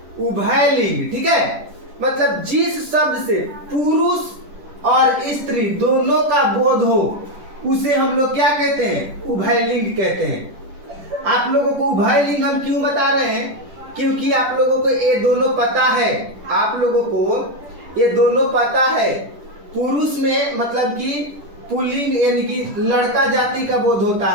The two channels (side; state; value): left; late; 10 ms